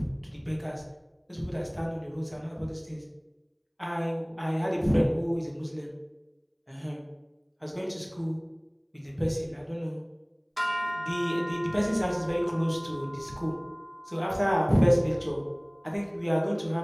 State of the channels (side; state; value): both; identical; correlation 1.00